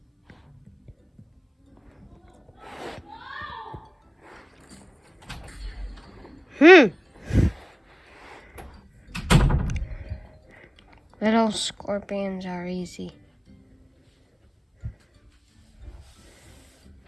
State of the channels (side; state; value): both; identical; correlation 1.00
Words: Little scorpions are easy.